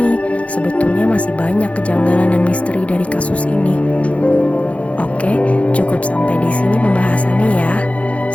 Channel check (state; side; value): late; right; 0.064 ms